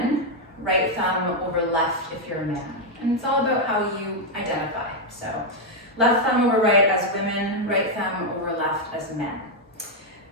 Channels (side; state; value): both; normal; correlation 0.01